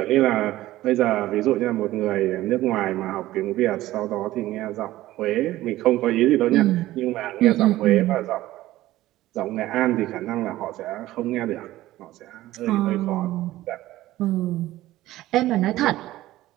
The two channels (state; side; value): quieter; left; 15.9 dB